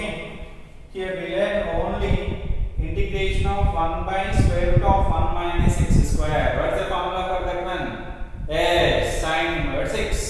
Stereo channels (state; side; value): identical; both; correlation 1.00